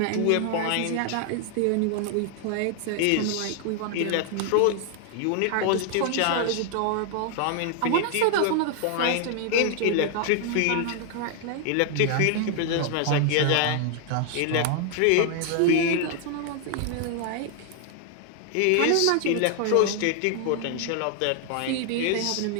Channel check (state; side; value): different; both; correlation 0.00